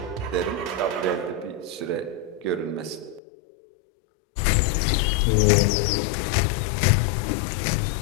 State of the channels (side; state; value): right; drops out; at 3.2 s